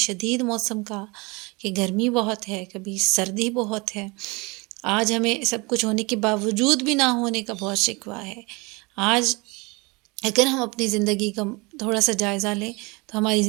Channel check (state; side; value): quieter; left; 26.6 dB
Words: موسم کا کہ گرمی بہت ہے، کبھی سردی بہت ہے۔ آج ہمیں سب کچھ ہونے کے باوجود بھی نہ ہونے کا بہت شکوہ ہے۔ آج اگر ہم اپنی زندگی کا تھوڑا سا جائزہ لیں تو ہماری